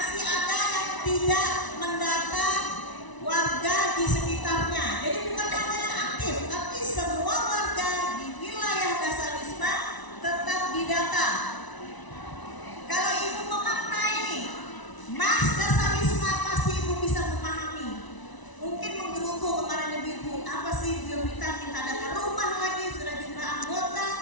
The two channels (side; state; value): right; late; 1.0 ms